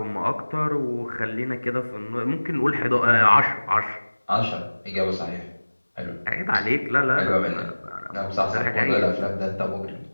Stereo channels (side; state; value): both; inverted; correlation -1.00